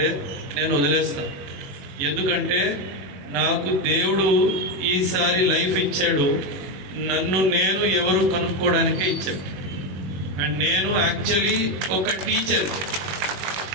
నేను వదిలేస్తాను. ఎందుకంటే నాకు దేవుడు ఈసారి లైఫ్ ఇచ్చాడు, నన్ను నేను ఎవరు కనుక్కోవడానికే ఇచ్చాడు. అండ్ నేను యాక్చువల్లీ ఒక టీచర్.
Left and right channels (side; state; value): left; late; 21 ms